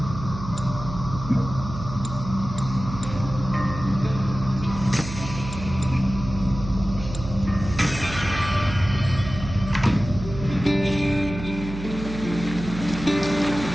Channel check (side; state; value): right; noise; hum, 9 dB below the sound